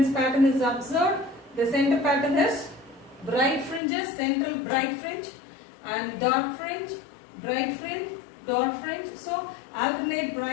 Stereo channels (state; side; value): drops out; right; at 3.8 s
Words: pattern is observed. The center pattern is bright fringes, central bright fringe, and dark fringe, bright fringe, dark fringe. So alternate